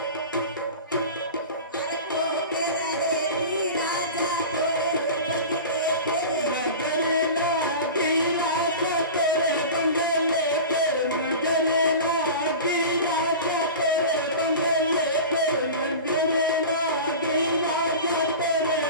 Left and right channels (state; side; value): inverted; both; correlation -0.33